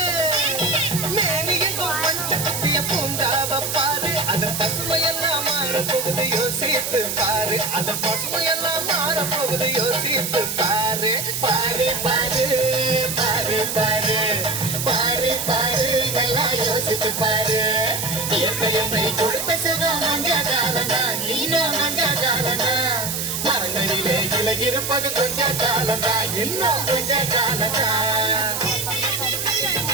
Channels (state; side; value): noise; right; hiss, 3 dB below the sound